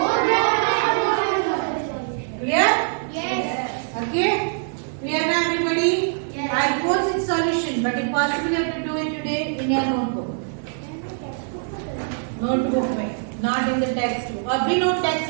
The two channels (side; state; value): left; silent; 55 dB below the other